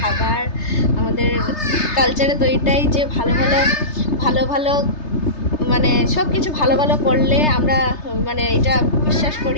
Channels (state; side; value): late; right; 3.3 ms